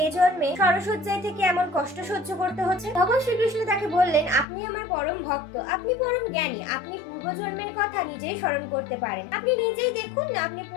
এ জন্মে সরসজ্জায় থেকে এমন কষ্ট সহ্য করতে হচ্ছে? তখন শ্রীকৃষ্ণ তাকে বললেন, আপনি আমার পরম ভক্ত, আপনি পরম জ্ঞানী, আপনি পূর্বজন্মের কথা নিজেই স্মরণ করতে পারেন। আপনি নিজেই দেখুন না আপনি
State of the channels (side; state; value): right; drops out; at 4.5 s